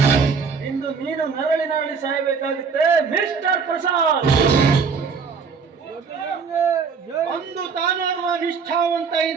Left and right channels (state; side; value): quieter; left; 5.5 dB